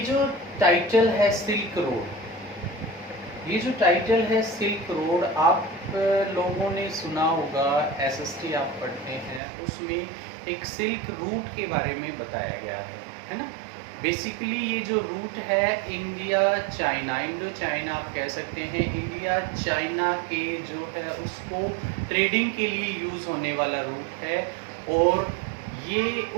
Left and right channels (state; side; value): drops out; left; at 9.4 s